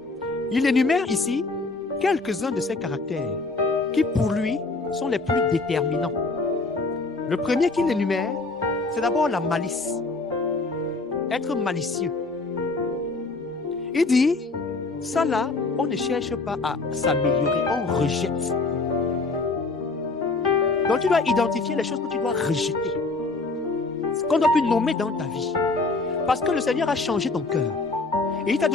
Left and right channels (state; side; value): quieter; right; 3.6 dB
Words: Il énumère ici quelques-uns de ces caractères qui, pour lui, sont les plus déterminants. Le premier qu'il énumère, c'est d'abord la malice. Être malicieux. Il dit, ça là, on ne cherche pas à s'améliorer, on rejette. Donc tu dois identifier les choses que tu dois rejeter. Ce qu'on doit plus nommer dans ta vie. Parce que le Seigneur a changé ton cœur. Et il t'a